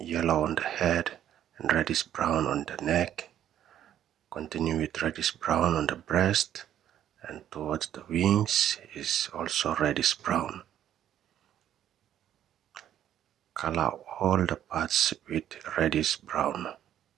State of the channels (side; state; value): left; quieter; 10.9 dB